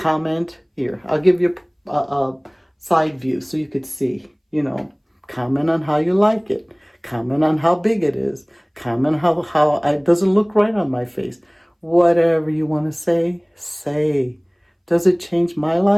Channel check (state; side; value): identical; both; correlation 1.00